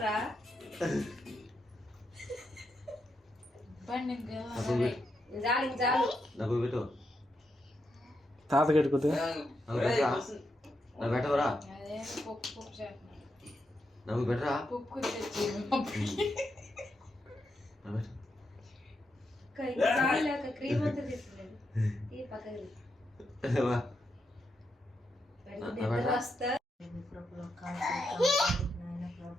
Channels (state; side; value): normal; both; correlation 0.83